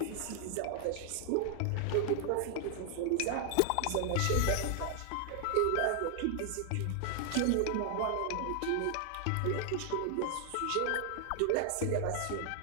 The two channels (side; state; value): both; different; correlation 0.00